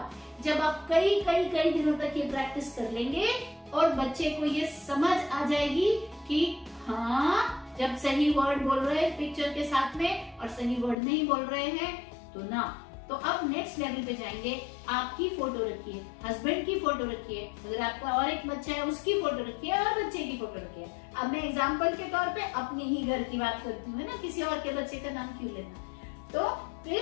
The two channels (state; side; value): drops out; right; at 11.0 s